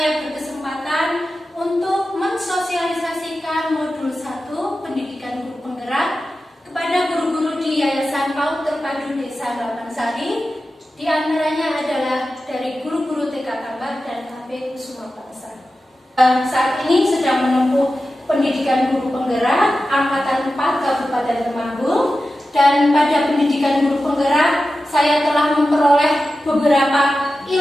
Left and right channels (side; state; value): both; normal; correlation 0.93